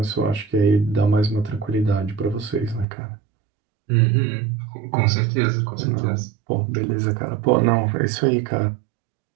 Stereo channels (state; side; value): drops out; left; at 2.9 s